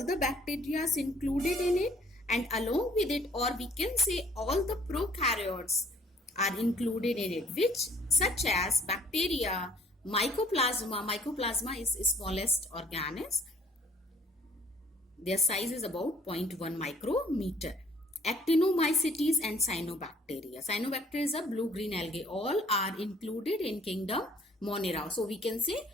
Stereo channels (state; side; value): normal; both; correlation 0.58